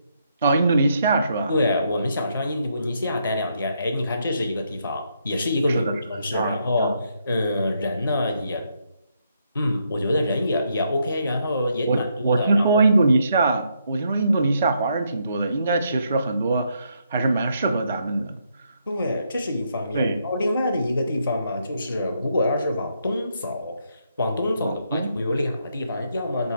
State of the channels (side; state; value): both; inverted; correlation -0.76